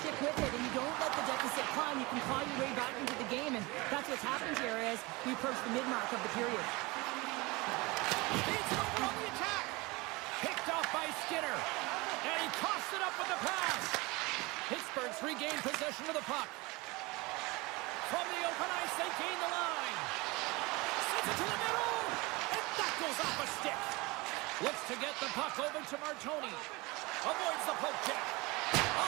stick with it and you don't let the deficit climb, you can claw your way back into the game. And that's what's happened here as we approach the mid-mark of the period. Beats it over on the attack. Picked off by Skinner. And he tossed it up with the pass. Pittsburgh's regained possession of the puck. From the open ice, they gain the line. Sends it to the middle. And that goes off a stick. Looks to get the puck over to Martoni. Avoids the poke check.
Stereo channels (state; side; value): quieter; left; 24.1 dB